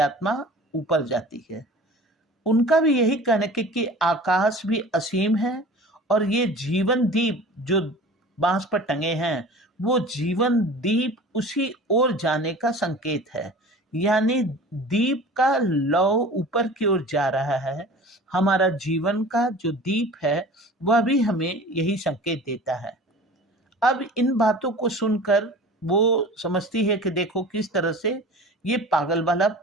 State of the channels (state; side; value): normal; both; correlation 0.41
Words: ऊपर जाती है। उनका भी यही कहना है कि आकाश भी असीम है और ये जीवन दीप जो बांस पर टंगे हैं वो जीवन दीप उसी ओर जाने का संकेत है। यानी दीप का लौ ऊपर की ओर जा रहा है। हमारा जीवन का जो दीप है वह भी हमें यही संकेत देता है। अब इन बातों को सुनकर वो समझती है कि देखो किस तरह से ये पागल वाला